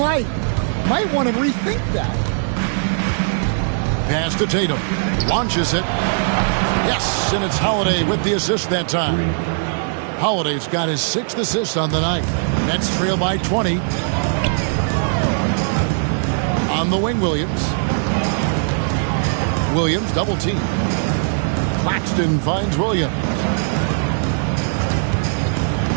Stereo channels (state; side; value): silent; left; digital silence